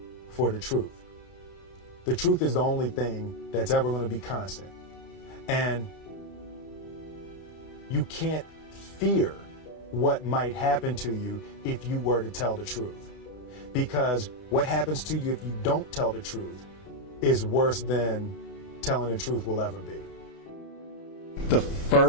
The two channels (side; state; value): right; late; 30 ms